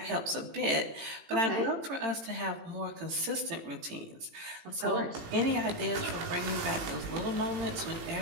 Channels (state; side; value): late; left; 18 ms